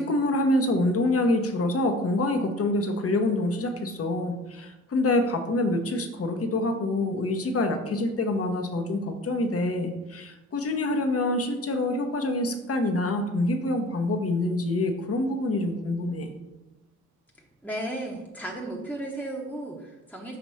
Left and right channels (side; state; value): both; normal; correlation 0.45